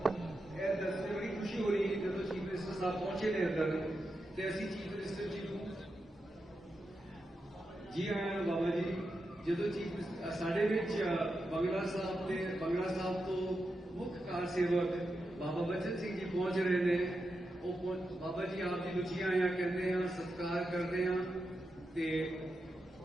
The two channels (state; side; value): normal; both; correlation 0.88